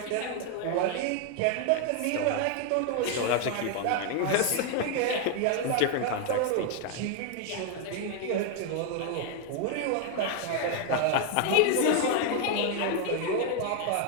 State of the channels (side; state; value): both; different; correlation 0.01